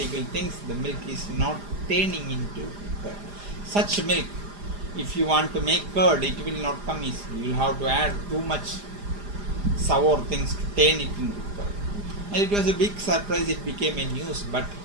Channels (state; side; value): late; left; 4.9 ms